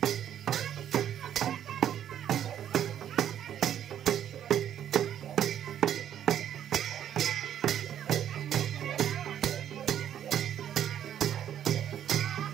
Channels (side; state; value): left; quieter; 10.2 dB